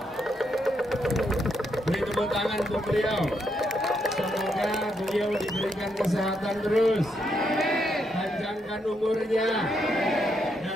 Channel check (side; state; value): both; normal; correlation 0.78